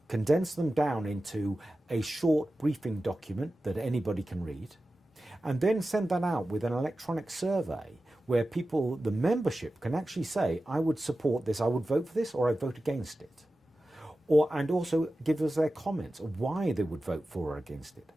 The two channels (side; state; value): both; normal; correlation 0.94